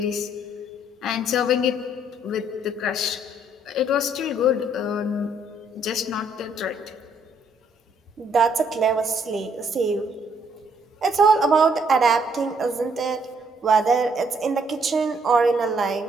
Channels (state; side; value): normal; both; correlation 0.68